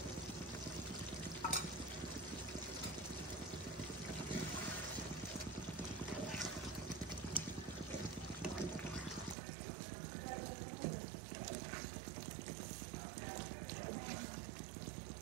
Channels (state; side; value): drops out; left; at 9.3 s